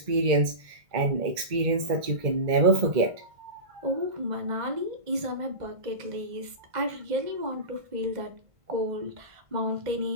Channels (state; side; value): late; left; 1.5 ms